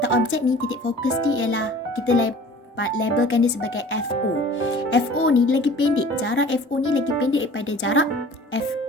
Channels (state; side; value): normal; both; correlation 0.46